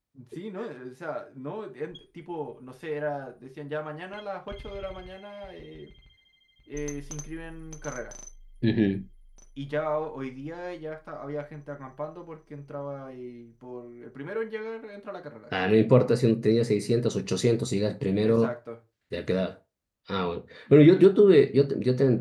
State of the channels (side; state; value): both; identical; correlation 1.00